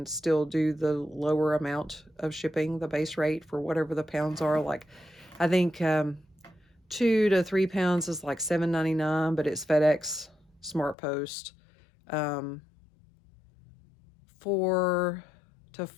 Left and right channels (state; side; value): drops out; right; at 11.0 s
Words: still do the lower amount of shipping, the base rate for whatever the pounds are. Like, I think 2 to 3 pounds is like $7.99, but it's FedEx, Smart Post. 4 to